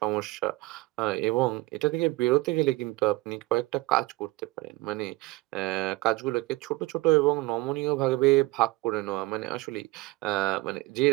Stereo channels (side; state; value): left; quieter; 21.1 dB